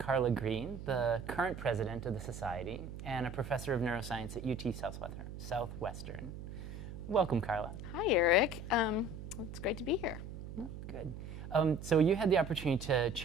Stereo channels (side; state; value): right; noise; hum, 10 dB below the sound